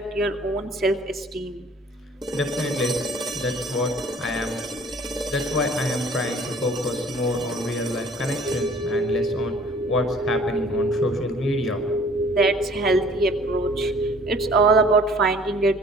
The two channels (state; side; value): normal; both; correlation 0.53